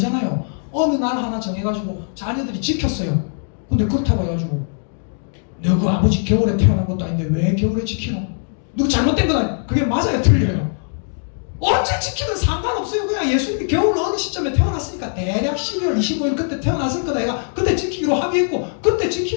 어느 날 하나 정해가지고 자녀들이 지켰어요. 근데 그렇다고 해가지고 너그 아버지 겨울에 태어난 것도 아닌데 왜 겨울에 지키노? 누구 잘못된 건 아니에요. 그게 맞아요? 틀려요? 언제 지키든 상관없어요. 그냥 예수님이 겨울 어느 시점에 태어났으니까 대략 12월 25일 그때 태어났을 거다. 얘가 그때 지키기로 합의했고 그때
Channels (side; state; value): right; silent; 66 dB below the other